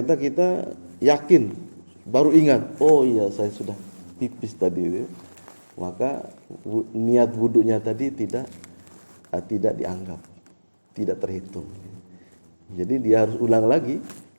kita yakin, baru ingat, oh iya saya sudah pipis tadi. Maka niat wudunya tadi tidak dianggap, tidak terhitung. Jadi dia harus ulang lagi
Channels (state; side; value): inverted; both; correlation -1.00